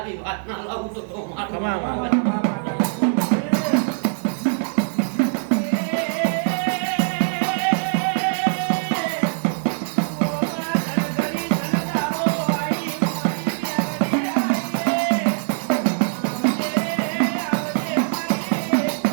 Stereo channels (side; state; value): left; silent; digital silence